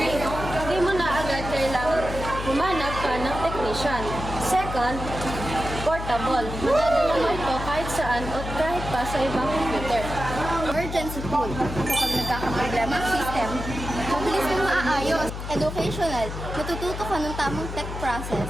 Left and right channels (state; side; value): noise; left; hum, 7 dB below the sound